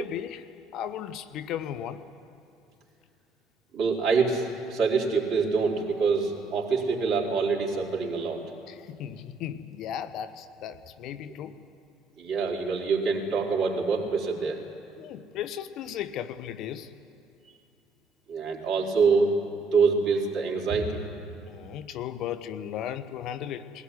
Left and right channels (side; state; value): left; quieter; 3.3 dB